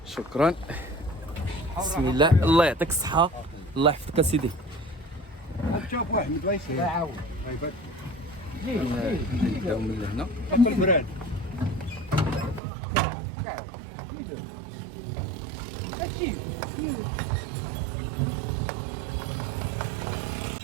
شكرا. بسم الله. الله يعطيك الصحه. الله يحفظك اسيدي. شوف واحد مدويس لا عاود نبداو من هنا. البراد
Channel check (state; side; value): drops out; left; at 12.6 s